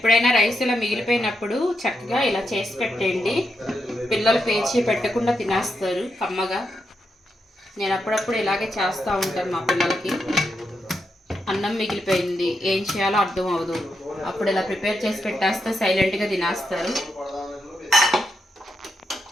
రైస్ ఇలా మిగిలిపోయినప్పుడు చక్కగా ఇలా చేసి పెట్టండి. పిల్లలు పేచి పెట్టకుండా తినేస్తారు కమ్మగా. నేను అప్పుడప్పుడు ఇలాగే చేస్తూ ఉంటాను మా పిల్లలకి. అన్నం మిగిలిపోయింది, ఏం చేయాలో అర్థం అవ్వదు, అప్పుడు ఇలా ప్రిపేర్ చేసి పెట్టేస్తే సైలెంట్గా తినేస్తారు.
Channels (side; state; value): both; normal; correlation 0.84